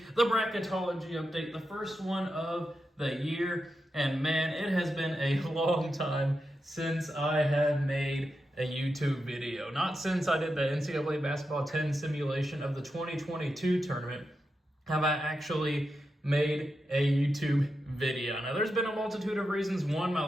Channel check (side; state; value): both; normal; correlation 0.88